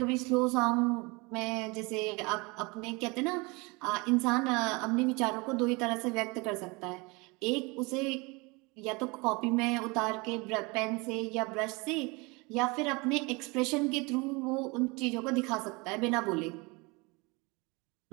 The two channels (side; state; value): left; quieter; 26.9 dB